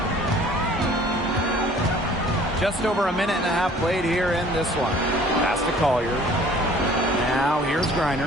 Just over a minute and a half played here in this one. Pass to Collier. Now here's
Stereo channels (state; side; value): normal; both; correlation 0.52